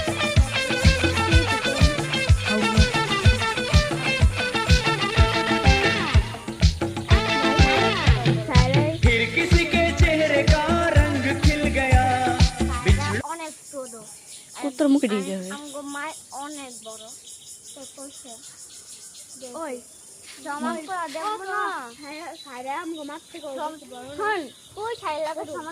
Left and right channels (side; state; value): both; identical; correlation 1.00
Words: फिर किसी के चेहरे का रंग खिल गया অনেক ছোট উত্তর মুখে দিয়ে যাবে আমগো মাই অনেক বড় তো কইছে ওই জামা পরা দেখো না সারা আমগো মাছ থেকে বড় হন কই ছাই লাগা